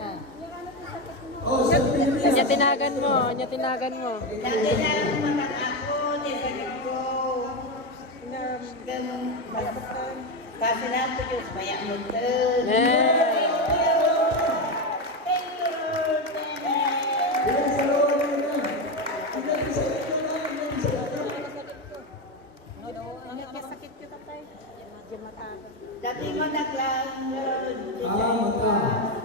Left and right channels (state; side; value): normal; both; correlation 0.12